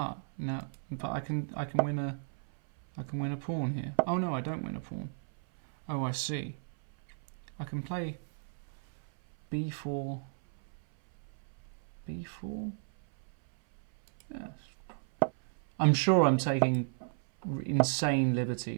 Now, but I can win a pawn here. Oh no, I don't win a pawn. Oh, I see. I can play b4. b4. Yes. I'm sure I'm taking insane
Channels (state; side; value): silent; left; 55 dB below the other